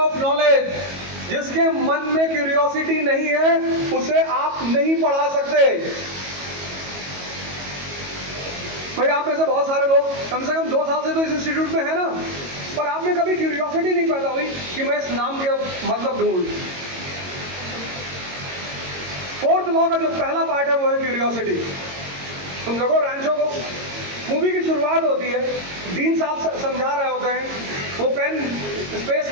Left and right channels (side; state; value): left; late; 22 ms